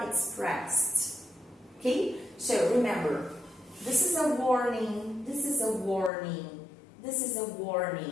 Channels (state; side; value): drops out; right; at 6.1 s